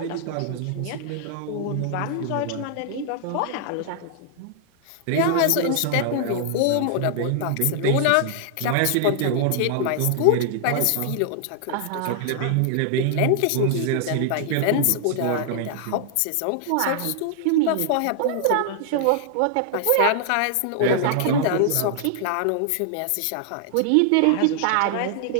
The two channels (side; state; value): both; different; correlation -0.01